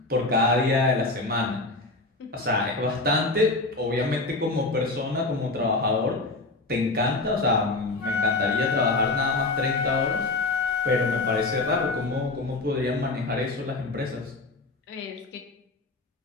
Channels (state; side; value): quieter; right; 3.2 dB